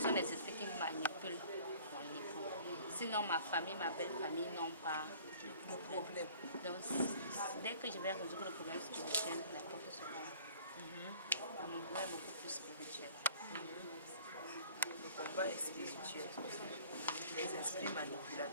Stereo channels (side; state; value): both; inverted; correlation -0.51